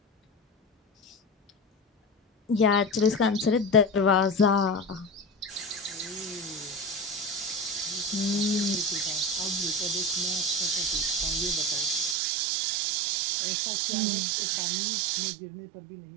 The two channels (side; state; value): left; drops out; at 12.2 s